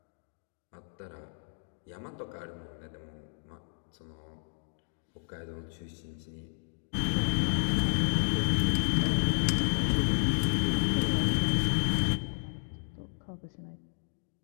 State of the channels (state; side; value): silent; right; digital silence